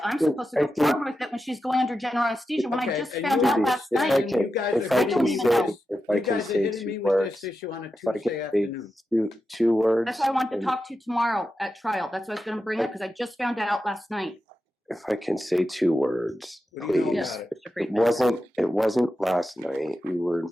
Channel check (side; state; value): both; normal; correlation 0.90